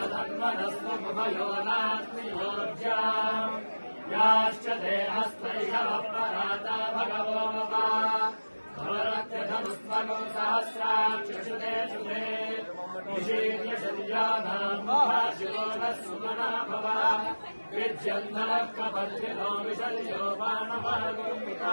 नास्ति योज्याम् याश्च ते हस्तैषवपराता भगवो ममा भवत्यधनुस्वनो सहस्राक्षुते शुभे निषीर्यशल्यानाम् महाशिरो नः सुमना भव विद्यन्धनः कपर्दिनो विशल्यो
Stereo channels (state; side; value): inverted; both; correlation -1.00